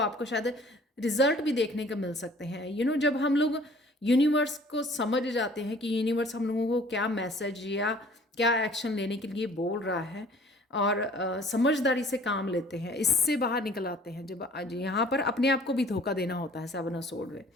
शायद रिजल्ट भी देखने को मिल सकते हैं। जब हम लोग यूनिवर्स को समझ जाते हैं कि यूनिवर्स हम लोगों को क्या मैसेज या क्या एक्शन लेने के लिए बोल रहा है, और समझदारी से काम लेते हैं, इससे बाहर निकल आते हैं। जब आज यहाँ पर अपने आप को भी धोखा देना होता है 7 ऑफ स्वॉर्ड में,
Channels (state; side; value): normal; both; correlation 0.53